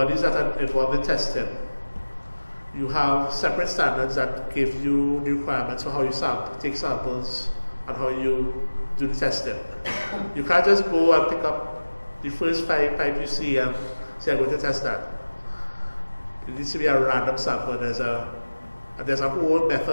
that are involved in testing, you have separate standards that give you the requirements for how you take samples and how you do the testing. You can't just go and pick up the first pipe you see and say, I'm going to test that. It needs to be a random sample. There's a whole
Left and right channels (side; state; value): both; inverted; correlation -1.00